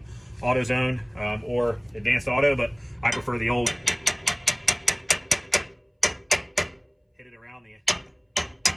AutoZone or Advanced Auto, but I prefer the old. Hit it around the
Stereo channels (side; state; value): both; identical; correlation 1.00